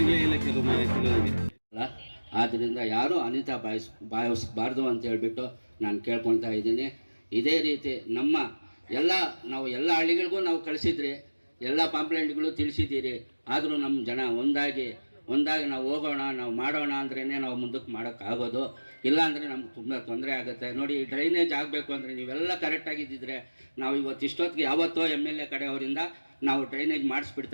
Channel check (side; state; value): both; inverted; correlation -1.00